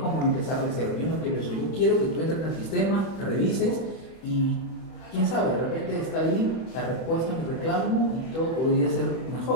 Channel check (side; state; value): right; late; 31 ms